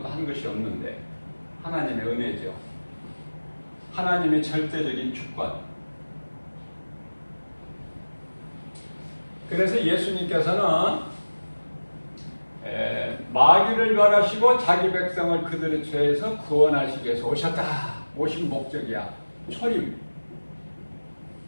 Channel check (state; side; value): inverted; both; correlation -1.00